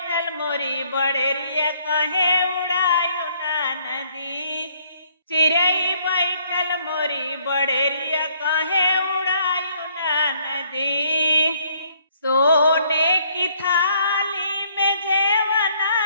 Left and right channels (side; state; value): both; inverted; correlation -0.65